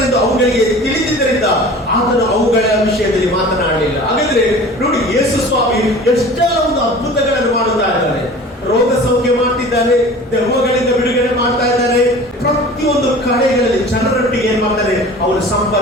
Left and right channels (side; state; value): both; normal; correlation 0.41